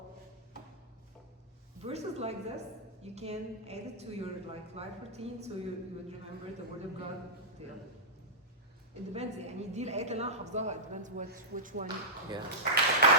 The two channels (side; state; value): both; normal; correlation -0.14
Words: Verses like this, you can add it to your life routine, so you would remember the word of God. It depends. يعني دي الآيات اللي أنا حافظاها. It depends which one. Yeah.